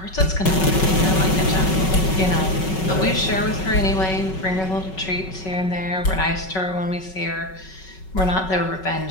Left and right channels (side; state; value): right; late; 5.3 ms